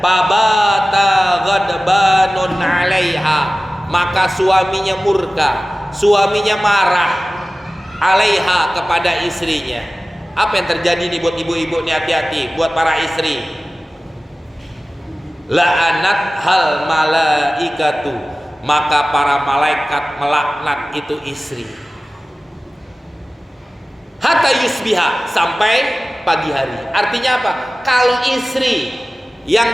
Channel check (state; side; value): normal; both; correlation 0.96